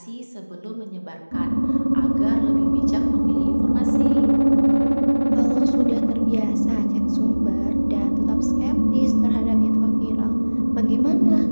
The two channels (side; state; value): both; inverted; correlation -1.00